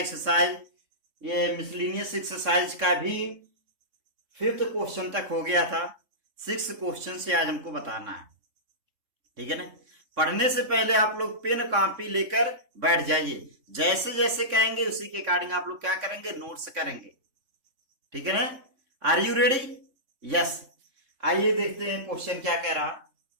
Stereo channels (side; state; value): left; late; 3.6 ms